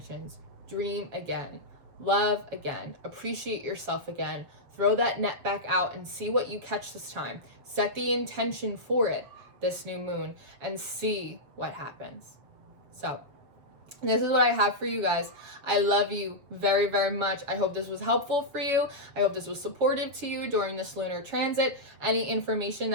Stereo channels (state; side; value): late; left; 7.2 ms